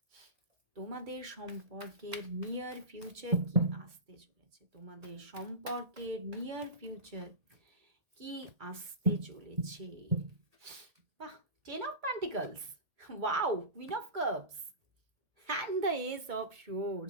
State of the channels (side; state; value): left; late; 1.8 ms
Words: তোমাদের সম্পর্কের নিয়ার ফিউচার কি আসতে চলেছে। তোমাদের সম্পর্কের নিয়ার ফিউচার কি আসতে চলেছে। বাহ, 10 of pentacles, wow, queen of cups and the S of